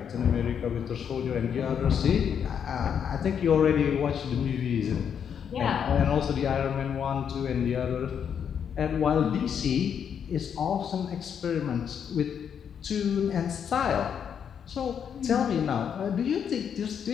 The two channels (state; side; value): quieter; right; 7.9 dB